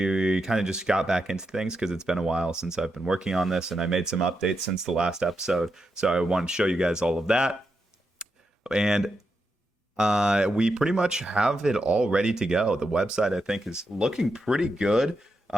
kind of just got back into things because it's been a while since I've been working on this, and I made some updates since the last episode. So I want to show you guys all of that. And we pretty much have it all ready to go. The website, I think, is looking pretty good.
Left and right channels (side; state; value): both; normal; correlation 0.85